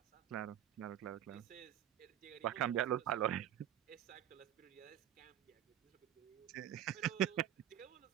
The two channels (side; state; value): left; quieter; 11.2 dB